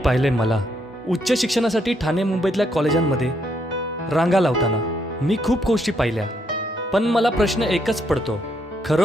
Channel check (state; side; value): normal; both; correlation 0.75